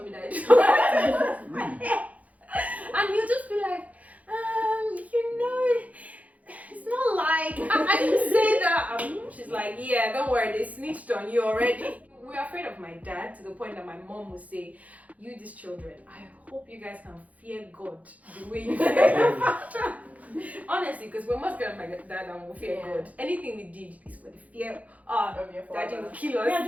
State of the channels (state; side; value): late; left; 0.071 ms